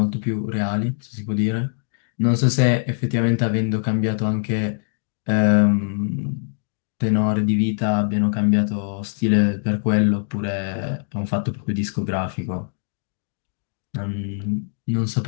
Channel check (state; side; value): silent; right; 64 dB below the other